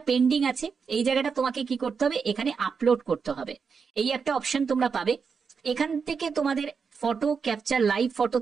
পেন্ডিং আছে, এই জায়গাটা তোমাকে কি করতে হবে, এখানে আপলোড করতে হবে। এই একটা অপশন তোমরা পাবে, এখান থেকে তোমাদের ফটো ক্যাপচার লাইভ ফটো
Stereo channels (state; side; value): quieter; left; 5.7 dB